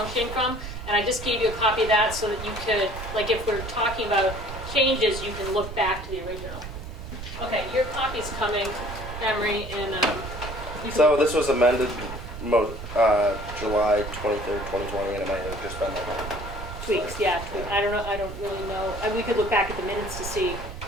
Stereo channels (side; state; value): right; noise; rumble, 9 dB below the sound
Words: from. And I just gave you a copy of that so that you could, like if we're talking about changes, you can look back to the original. Okay, your copy's coming, Emery, and you can- So this was amended July 23rd, 2020, and it might have just been like. tweaks, yeah, tweak. I don't really know. We could look back at the minutes to see